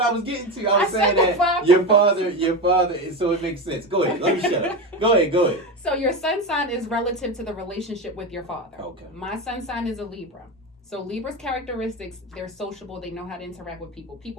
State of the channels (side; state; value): both; normal; correlation 0.19